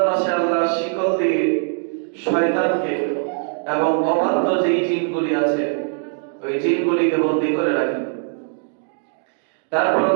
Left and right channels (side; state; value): left; silent; 65 dB below the other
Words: মাসে আল্লাহ শিকল দিয়ে শয়তানকে এবং অবাধ্য যেই জিনগুলি আছে ওই জিনগুলিকে বন্দী করে রাখেন। তারপর